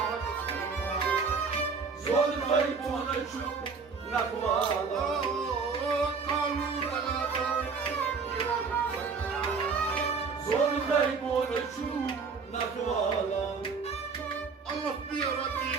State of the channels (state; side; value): quieter; left; 5.1 dB